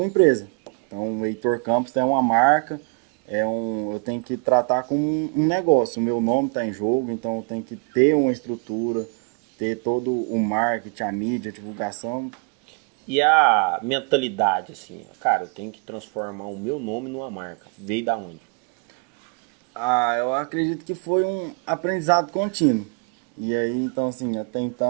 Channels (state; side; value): quieter; left; 35.2 dB